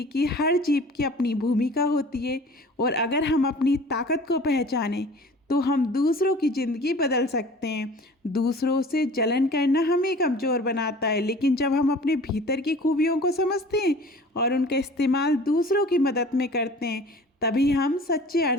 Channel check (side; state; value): both; normal; correlation 0.44